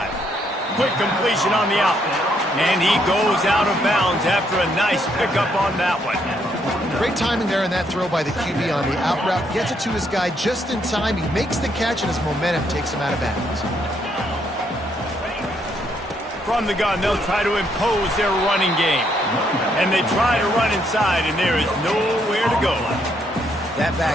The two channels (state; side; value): normal; both; correlation 0.73